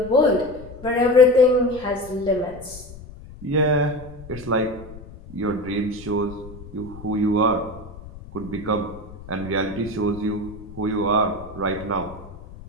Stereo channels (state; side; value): noise; left; rumble, 16 dB below the sound